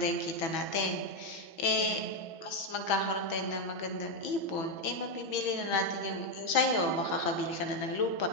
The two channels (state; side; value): late; right; 6.2 ms